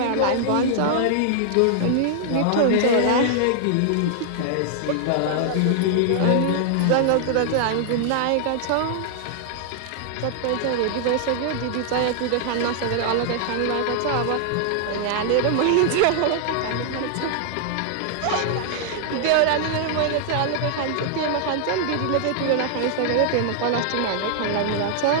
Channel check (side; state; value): both; different; correlation -0.01